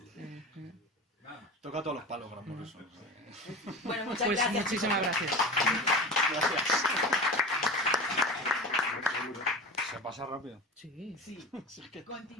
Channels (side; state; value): both; normal; correlation 0.31